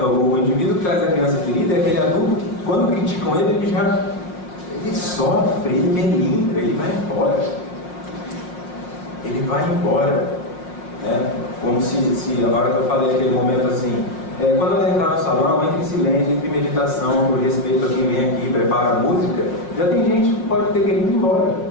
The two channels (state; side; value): late; right; 5.6 ms